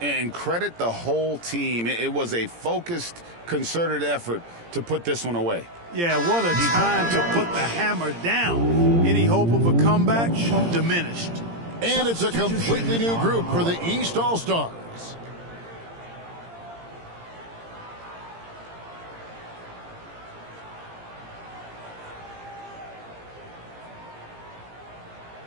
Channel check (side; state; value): left; late; 17 ms